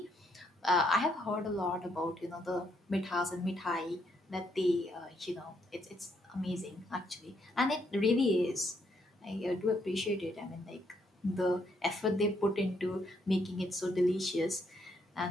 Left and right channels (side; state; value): both; normal; correlation 0.73